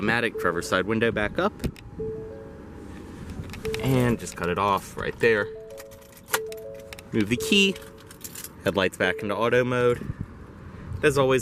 driver's side window back up, and just cut it off right there. Move the key, headlights back into auto mode. As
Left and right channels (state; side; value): identical; both; correlation 1.00